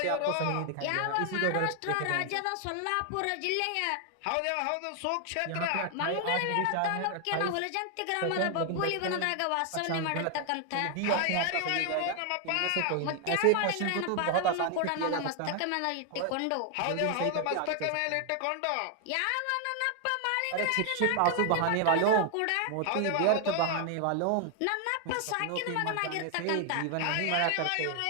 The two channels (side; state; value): both; different; correlation 0.00